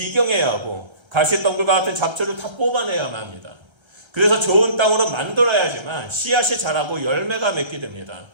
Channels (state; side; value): late; left; 1.3 ms